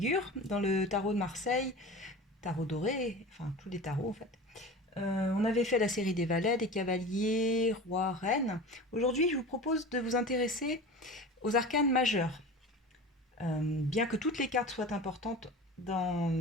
dans le tarot de Marseille, tarot doré, enfin tous les tarots en fait. On avait fait la série des valets, des cavaliers, rois, reines. Aujourd'hui je vous propose de vous intéresser aux arcanes majeurs. Bien que toutes les cartes soient importantes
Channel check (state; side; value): normal; both; correlation 0.34